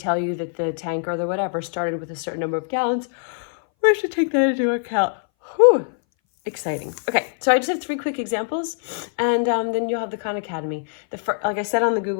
you that the tank or the whatever started with a certain number of gallons, we should take that into account. Whew. Exciting. Okay, so I just have 3 quick examples, and then you'll have the Khan Academy. Like I said on the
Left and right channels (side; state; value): right; silent; 61 dB below the other